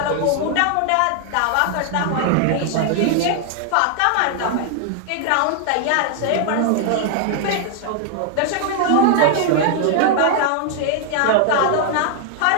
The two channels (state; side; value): different; both; correlation 0.00